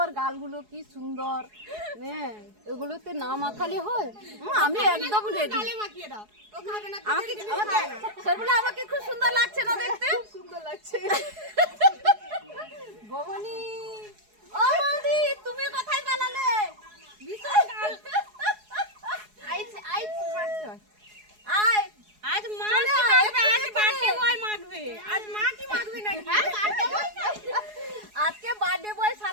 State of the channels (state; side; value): late; left; 4.7 ms